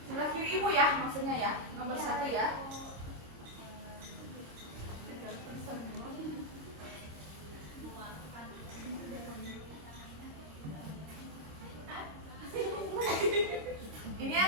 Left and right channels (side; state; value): left; late; 26 ms